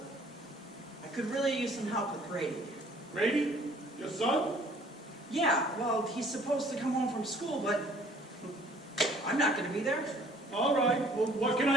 I could really use some help with Grady. Grady? Your son? Yeah, well, he's supposed to come home from school, but I'm not going to be there. All right. Well, what can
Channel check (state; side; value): normal; both; correlation 0.56